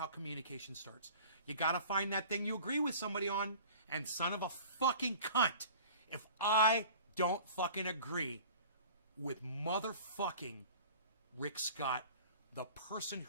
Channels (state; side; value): inverted; both; correlation -0.43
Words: communication starts. You gotta find that thing you agree with somebody on. And son of a fucking cunt, if I don't fucking agree with motherfucking Rick Scott, the person